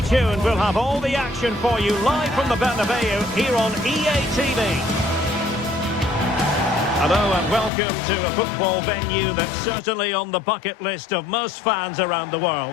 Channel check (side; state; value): right; drops out; at 7.7 s